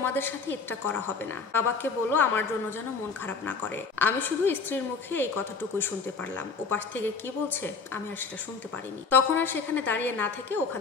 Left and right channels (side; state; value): right; quieter; 4.9 dB